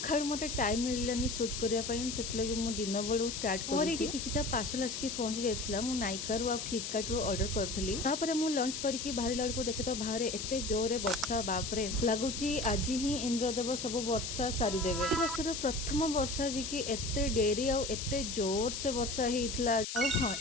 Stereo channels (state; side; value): noise; left; hiss, 5 dB below the sound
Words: मते टाइम मिललानी शूट करिया पई सेतलगे मु दिन बळू स्टार्ट करी कि किछटा पार्सल आसकी पहुंच जायतला। मु नाइका रु आ फ्लिपकार्ट रु ऑर्डर करथली। तापरे मु लॉन्च करिकि बाहर लड़को देखे तो बाहर एते जोरे वर्षा, बाप रे लागुची आज ही इंद्रदेव सब वर्षा सारी देबे। ई वर्षर प्रथम वर्षा जी कि एते डेरी आ एते जोर से वर्षा हेइतला। आ हां